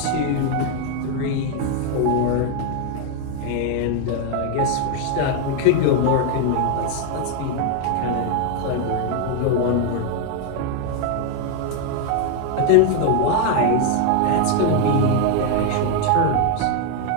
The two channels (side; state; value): both; different; correlation 0.01